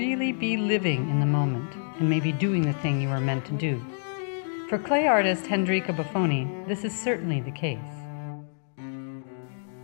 be living in the moment and maybe doing the thing you were meant to do. For clay artist HendrikaBuffone, this is certainly the case. You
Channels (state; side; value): silent; right; digital silence